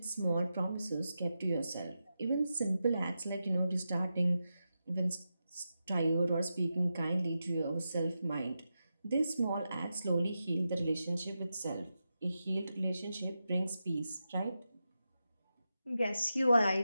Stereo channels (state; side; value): inverted; both; correlation -0.89